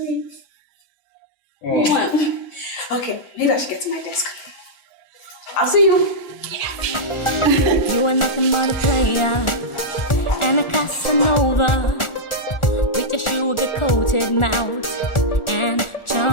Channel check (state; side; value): late; right; 1.4 ms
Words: Okay, maybe I should get to my desk. I'll see you. You are nothing but a player and a Casanova with your sugar-coated mouth and